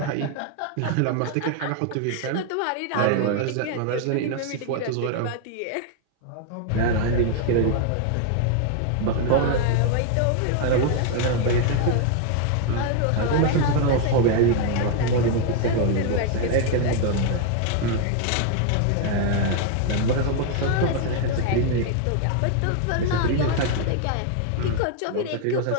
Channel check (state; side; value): different; both; correlation 0.00